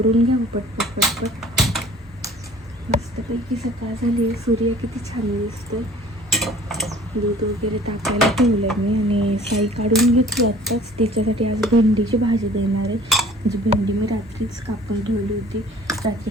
घ्यावं पटपट. मस्तपैकी सकाळ झाली. सूर्य किती छान दिसतोय. दूध वगैरे टाकायला ठेवलं आहे मी आणि साई काढून घेतली आत्ताच. तिच्यासाठी आज भेंडीची भाजी देणार आहे. म्हणजे भेंडी मी रात्रीच कापून ठेवली होती, रात्री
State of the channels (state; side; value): normal; both; correlation 0.50